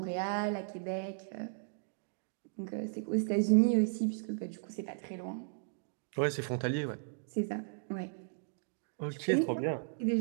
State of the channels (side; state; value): left; silent; digital silence